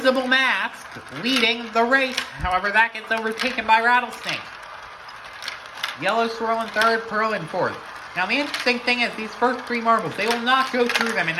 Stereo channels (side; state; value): both; identical; correlation 1.00